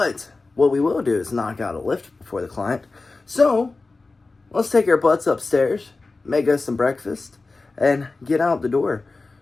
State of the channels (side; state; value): right; quieter; 3.6 dB